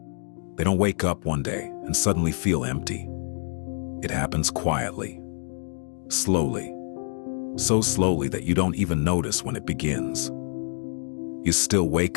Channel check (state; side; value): silent; right; 61 dB below the other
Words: They don't wake up one day and suddenly feel empty. It happens quietly, slowly, so slowly that you don't even notice when it begins. You still